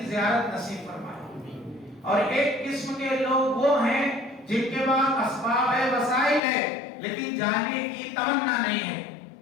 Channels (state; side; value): drops out; right; at 6.4 s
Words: زیارت نصیب فرمائے. اور ایک قسم کے لوگ وہ ہیں جن کے پاس اسباب ہے, وسائل ہے, لیکن جانے کی تمنا نہیں ہے.